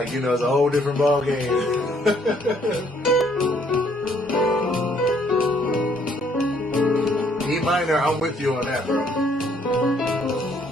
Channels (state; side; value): normal; both; correlation 0.66